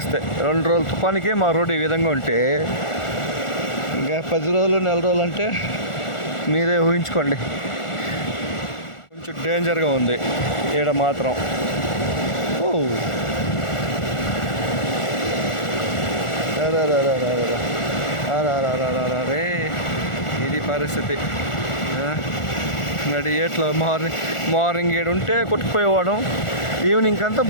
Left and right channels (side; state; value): right; late; 1.4 ms